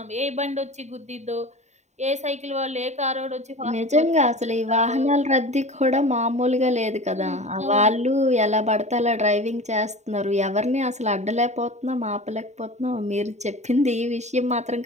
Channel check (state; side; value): late; left; 0.33 ms